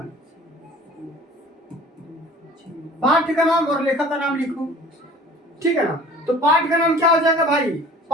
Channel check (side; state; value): both; normal; correlation 0.46